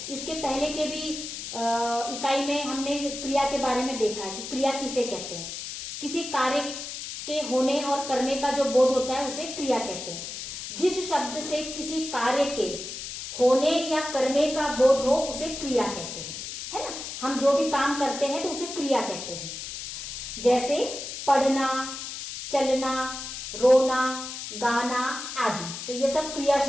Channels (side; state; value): left; noise; hiss, 8 dB below the sound